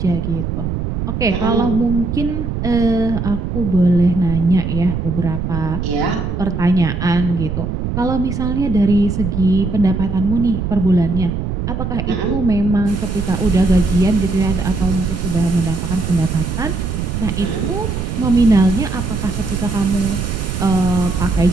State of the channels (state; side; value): noise; right; rumble, 3 dB below the sound